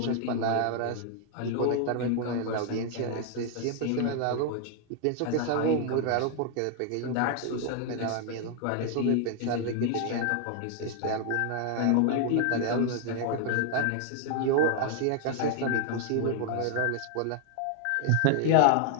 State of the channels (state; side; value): different; both; correlation 0.00